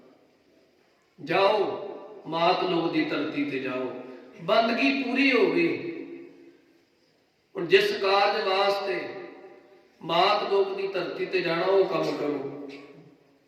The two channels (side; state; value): both; identical; correlation 1.00